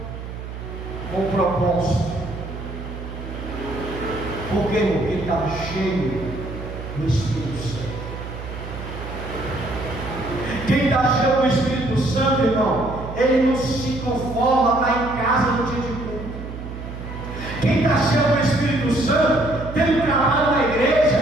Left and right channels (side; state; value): right; noise; hum, 10 dB below the sound